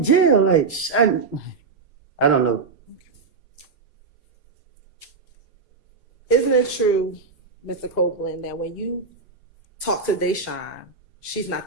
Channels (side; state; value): left; quieter; 4.7 dB